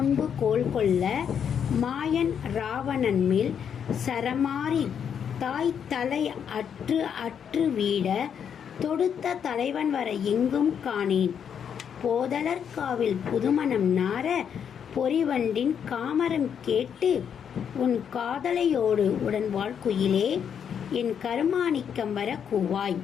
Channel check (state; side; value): quieter; right; 7.9 dB